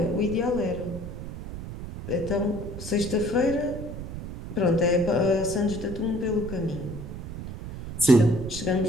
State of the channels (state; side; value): noise; right; rumble, 9 dB below the sound